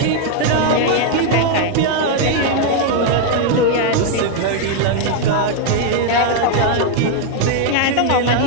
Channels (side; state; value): both; different; correlation 0.00